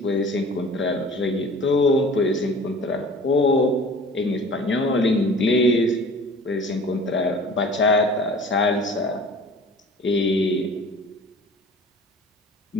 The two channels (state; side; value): normal; both; correlation 0.44